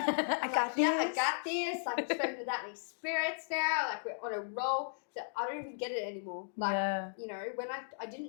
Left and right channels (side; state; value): right; silent; digital silence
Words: like, I got this. Like, I'm spoken to that many spirits now. Like, we're on a roll. So I don't even get it anymore. Like, you know, when I